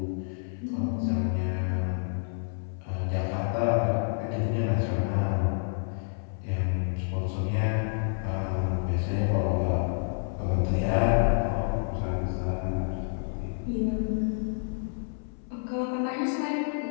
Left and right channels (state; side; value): silent; right; 59 dB below the other